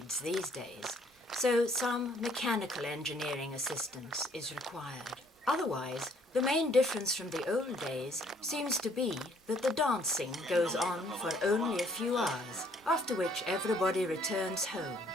these days, so some mechanical engineering assistance is required. Otherwise, the main difference from the old days seems to be that the dancing goes on for only a few hours, after which everybody returns home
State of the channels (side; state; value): both; normal; correlation 0.63